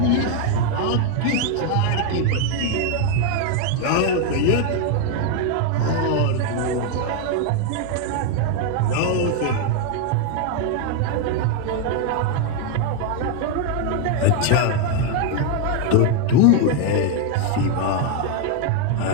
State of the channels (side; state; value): both; different; correlation 0.01